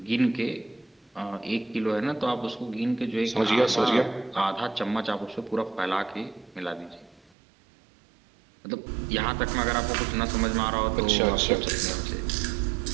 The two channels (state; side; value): drops out; left; at 7.3 s